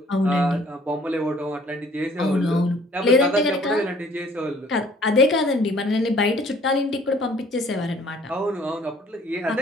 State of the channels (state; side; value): normal; both; correlation 0.57